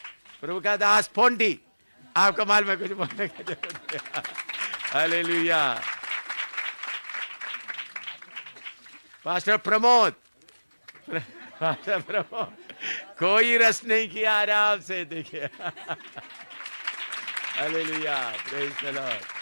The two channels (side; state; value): both; inverted; correlation -1.00